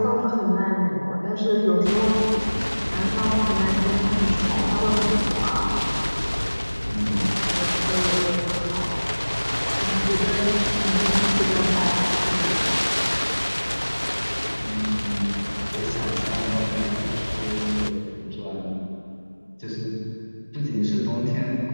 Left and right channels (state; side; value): inverted; both; correlation -1.00